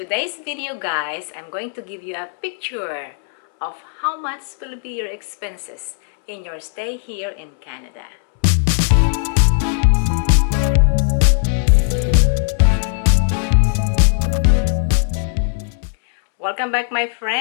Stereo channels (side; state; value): right; silent; 67 dB below the other